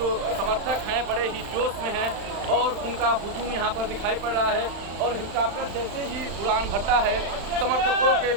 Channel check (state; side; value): late; left; 36 ms